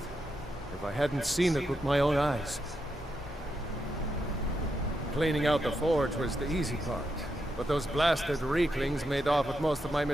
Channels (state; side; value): normal; both; correlation 0.84